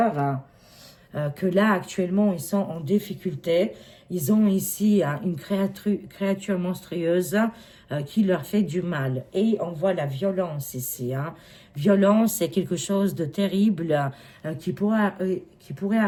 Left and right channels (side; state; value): both; identical; correlation 1.00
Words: Hein, que là, actuellement, ils sont en difficulté. Ils ont ici une créature monstrueuse qui leur fait du mal. Et on voit la violence ici. Hein. Violence, c'est quelque chose de terrible qui pourrait